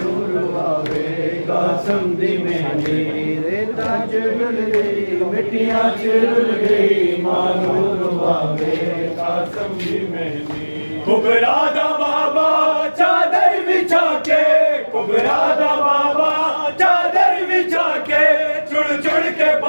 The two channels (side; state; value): both; inverted; correlation -1.00